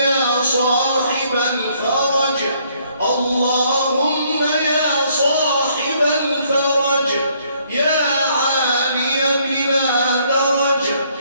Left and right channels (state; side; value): inverted; both; correlation -0.67